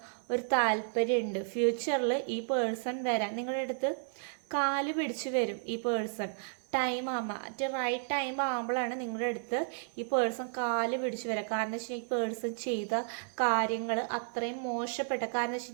ഒരു താല്പര്യമുണ്ട്. ഫ്യൂച്ചറിൽ ഈ പേഴ്സൺ വരാൻ നിങ്ങളുടെ അടുത്ത് കാല് പിടിച്ച് വരും. ഈ പേഴ്സൺ ടൈം ആകുമ്പോൾ റൈറ്റ് ടൈം ആകുമ്പോഴാണ് നിങ്ങളുടെ അടുത്ത് ഈ പേഴ്സൺ കാല് പിടിച്ച് വരിക. കാരണം വെച്ച് കഴിഞ്ഞാൽ ഈ പേഴ്സൺ ചെയ്ത കാര്യങ്ങൾ അത്രയും മോശപ്പെട്ട, കാരണം വെച്ച്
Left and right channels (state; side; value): silent; left; 56 dB below the other